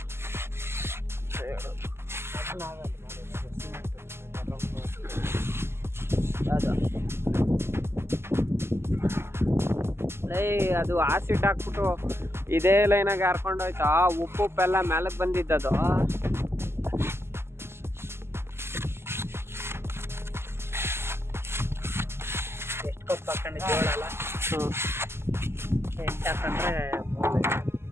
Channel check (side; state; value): left; late; 0.12 ms